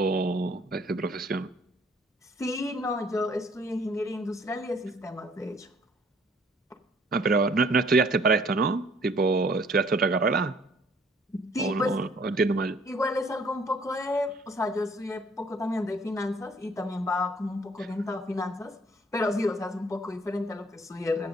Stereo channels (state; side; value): normal; both; correlation 0.60